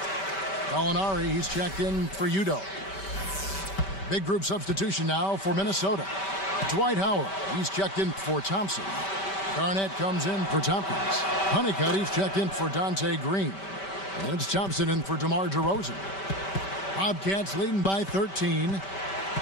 Gallinari, he's checked in for Udo. Big group substitution now for Minnesota. Dwight Howard, he's checked in for Thompson. Garnett comes in for Tompkins. Honeycutt, he's checked in for Dante Green. And it's Thompson in for DeMar DeRozan. Bobcats leading by 13.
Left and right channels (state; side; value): late; right; 5.2 ms